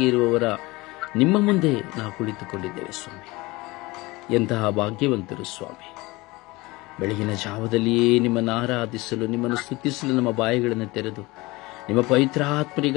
ಇರುವವರ ನಿಮ್ಮ ಮುಂದೆ ನಾವು ಕುಳಿತುಕೊಂಡಿದ್ದೇವೆ ಸ್ವಾಮಿ. ಎಂತಹ ಭಾಗ್ಯವಂತರು ಸ್ವಾಮಿ. ಬೆಳಗಿನ ಜಾವದಲ್ಲಿಯೇ ನಿಮ್ಮನ್ನು ಆರಾಧಿಸಲು, ನಿಮ್ಮನ್ನು ಸ್ತುತಿಸಲು ನಮ್ಮ ಬಾಯಿಗಳನ್ನು ತೆರೆದು ನಿಮ್ಮ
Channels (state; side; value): quieter; right; 22.1 dB